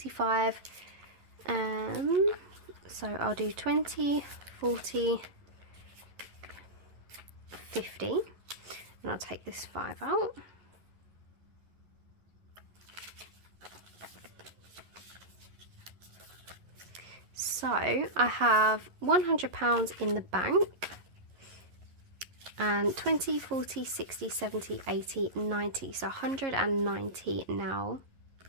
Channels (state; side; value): late; left; 11 ms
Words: So I'll do 20, 40, 50, and I'll take this 5 out. So I have £100 in the bank, and 20, 40, 60, 70, 80, 90, so 190 now.